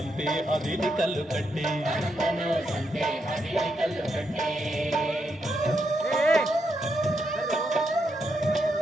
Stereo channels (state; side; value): normal; both; correlation 0.81